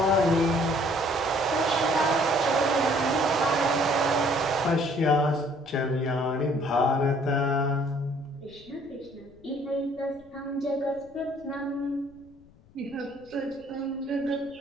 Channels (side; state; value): left; noise; rumble, 27 dB below the sound